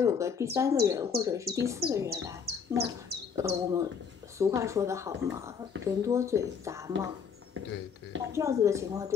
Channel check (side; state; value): right; quieter; 6.6 dB